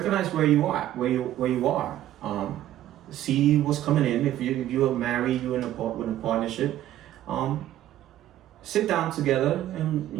where you are. See what's coming in. If you are married, you're in a partnership. Sit down together and,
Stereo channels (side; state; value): left; quieter; 13.0 dB